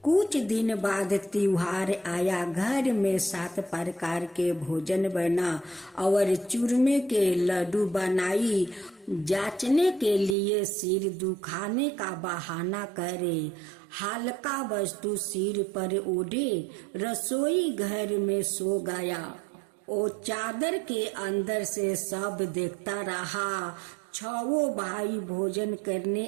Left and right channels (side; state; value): left; drops out; at 10.4 s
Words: कुछ दिन बाद त्योहार आया। घर में 7 प्रकार के भोजन बना और चूरमे के लड्डू बनाई। जांचने के लिए सिर दुखाने का बहाना करे, हल्का वस्तु सिर पर ओढ़े, रसोई घर में सो गया। वो चादर के अंदर से सब देखता रहा। 6 भाई भोजन करने